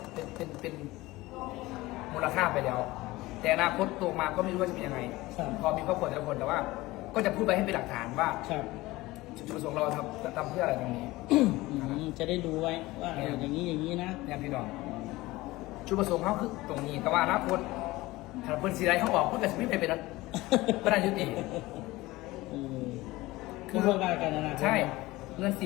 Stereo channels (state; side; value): quieter; right; 19.4 dB